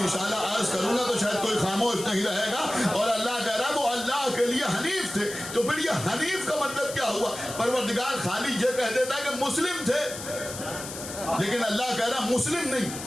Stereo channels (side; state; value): left; noise; hiss, 10 dB below the sound